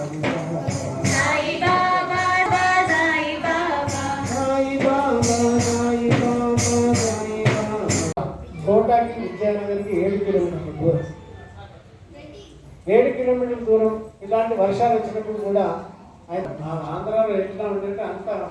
కోటాకి విద్యానగర్కి 7 కిలోమీటర్ల దూరం. 7 కిలోమీటర్ల దూరం. ఇలాంటి వర్షాలు వచ్చినప్పుడు కూడా ఆంధ్రాలో ఎట్లా ఉందంటే అంత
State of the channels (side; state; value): both; identical; correlation 1.00